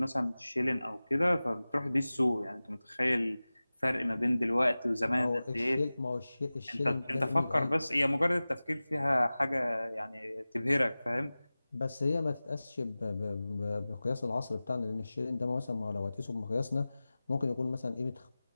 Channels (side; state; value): both; inverted; correlation -0.98